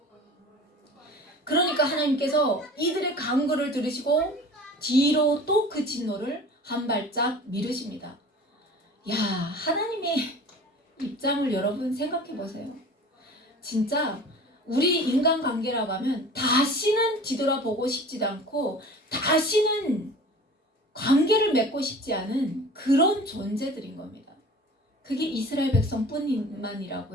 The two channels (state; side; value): normal; both; correlation 0.42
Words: 그러니까 하나님께서 이들의 간구를 들으시고 뒤로 또 그 진노를 한 발짝 미루십니다. 야, 하나님의 입장을 여러분 생각해 보세요. 진짜 우리 인간관계라고 하면 다시는 뒤돌아보고 싶지도 않고 다시는 관계를 맺고 싶지 않은 그런 존재들인 겁니다. 그게 이스라엘